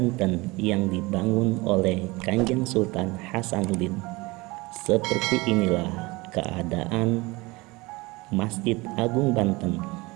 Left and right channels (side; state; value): left; quieter; 23.1 dB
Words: yang dibangun oleh Kanjeng Sultan Hasanuddin. Seperti inilah keadaan Masjid Agung Banten.